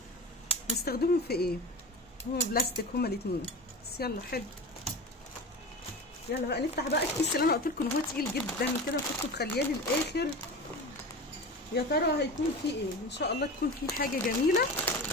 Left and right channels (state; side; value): normal; both; correlation 0.30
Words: نستخدمهم في ايه؟ هما بلاستيك هما الاتنين، بس يلا حلو. يلا بقى نفتح بقى الكيس اللي انا قلت لكم ان هو تقيل جدا كده، وكنت مخلياه للاخر. يا ترى هيكون فيه ايه؟ ان شاء الله تكون فيه حاجه جميله